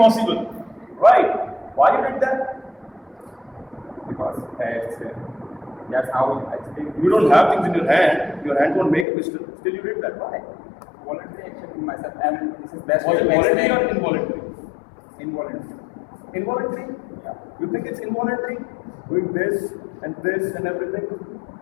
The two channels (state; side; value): drops out; right; at 9.1 s